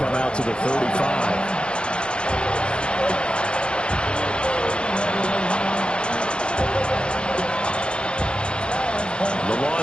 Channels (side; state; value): right; late; 0.054 ms